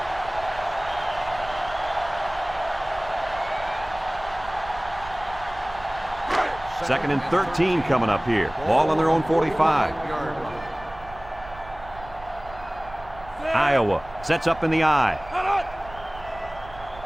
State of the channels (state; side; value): noise; right; rumble, 18 dB below the sound